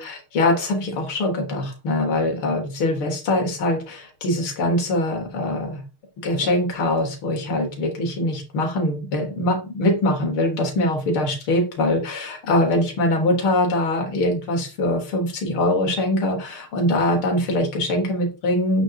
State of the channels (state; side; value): late; right; 6.5 ms